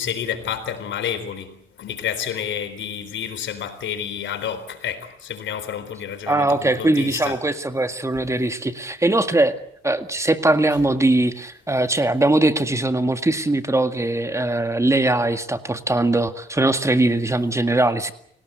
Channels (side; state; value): both; normal; correlation 0.71